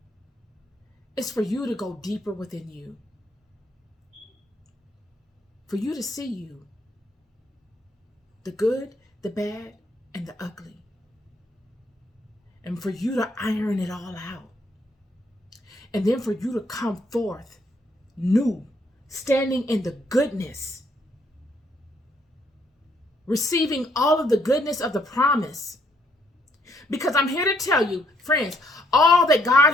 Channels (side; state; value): both; normal; correlation 0.70